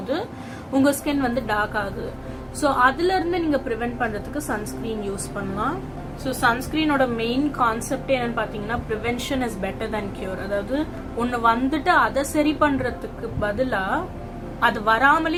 உங்கள் ஸ்கின் வந்து டார்க் ஆகுது. ஸோ அதுலேருந்து நீங்கள் ப்ரிவென்ட் பண்ணுறதுக்கு சன்ஸ்க்ரீன் யூஸ் பண்ணலாம். ஸோ சன்ஸ்க்ரீனோட மெயின் கான்செப்டே என்னன்னு பார்த்தீங்கன்னா, prevention is better then cure. அதாவது ஒன்று வந்துட்டு அதை சரி பண்ணுறதுக்கு பதிலாக அது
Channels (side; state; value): both; identical; correlation 1.00